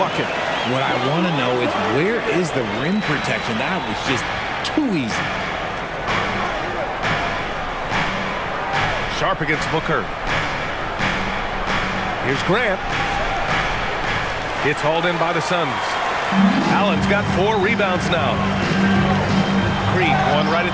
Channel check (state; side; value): identical; both; correlation 1.00